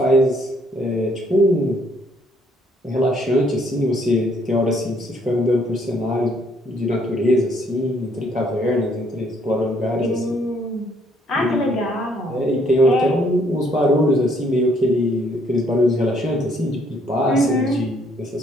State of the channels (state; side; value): normal; both; correlation 0.67